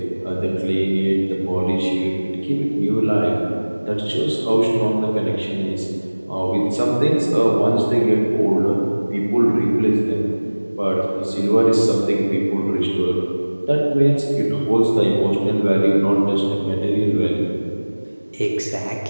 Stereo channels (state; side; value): inverted; both; correlation -1.00